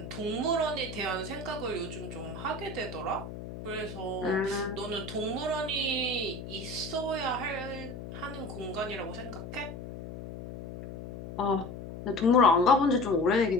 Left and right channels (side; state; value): left; noise; hum, 10 dB below the sound